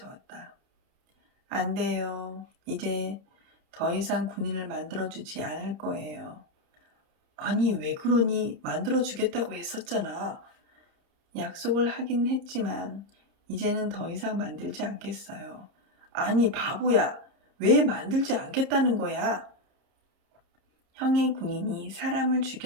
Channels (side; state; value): left; late; 30 ms